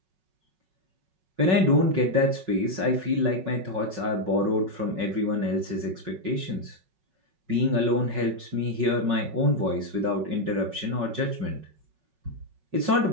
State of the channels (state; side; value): late; left; 5.4 ms